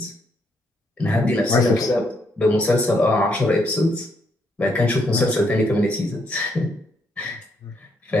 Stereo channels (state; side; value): normal; both; correlation 0.74